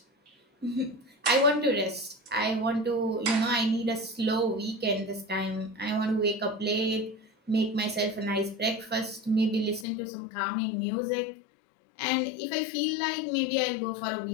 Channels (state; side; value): drops out; right; at 9.9 s